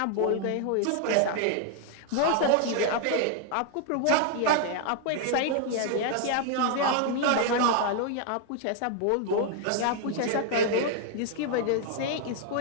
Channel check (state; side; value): different; both; correlation 0.00